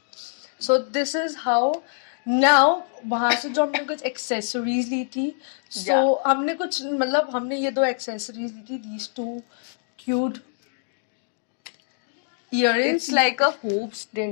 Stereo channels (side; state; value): right; silent; digital silence